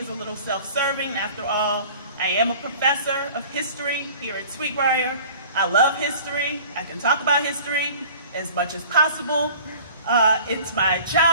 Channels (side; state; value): both; inverted; correlation -0.46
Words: a little self-serving. After all, I am a professor of history here at Sweetbriar. I love history. I can talk about history as much as possible. It's my